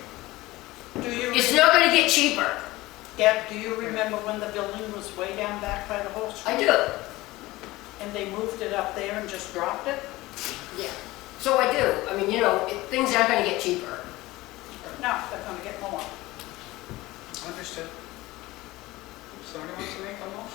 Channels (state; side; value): quieter; right; 19.1 dB